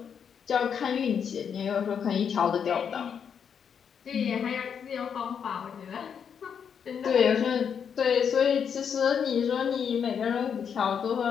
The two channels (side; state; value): right; quieter; 7.4 dB